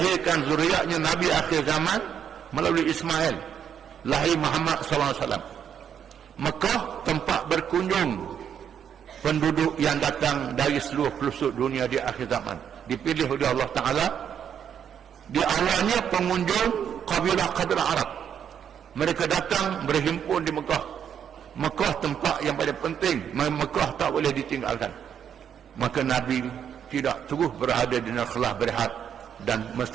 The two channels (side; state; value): left; quieter; 8.5 dB